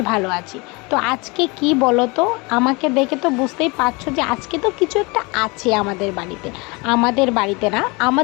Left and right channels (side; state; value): right; quieter; 27.0 dB